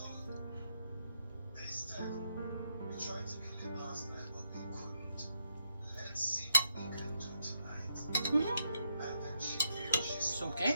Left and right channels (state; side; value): inverted; both; correlation -0.80